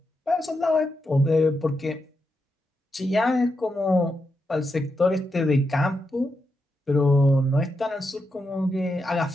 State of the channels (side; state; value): both; normal; correlation 0.85